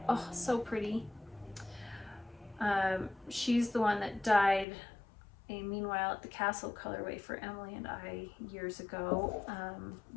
Oh, so pretty. She's the one that dyed a Meanwhile at the Castle colorway for Emily and I years ago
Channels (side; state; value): right; drops out; at 4.7 s